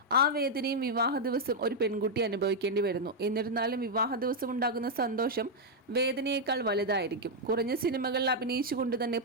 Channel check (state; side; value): normal; both; correlation -0.02